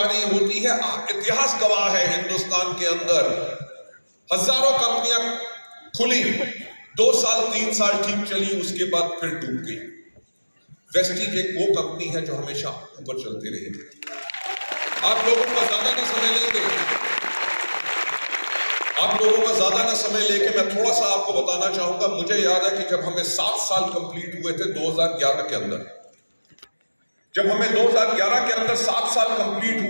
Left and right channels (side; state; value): both; inverted; correlation -1.00